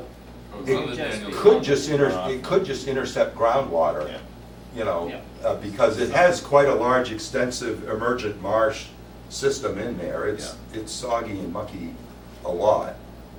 Goes It under just Daniel's be- Could Road. just it could just intercept groundwater, Yeah. you know, Yeah. because it has quite a large, extensive emergent marsh system in there. It's soggy and mucky a lot.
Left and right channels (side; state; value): both; identical; correlation 1.00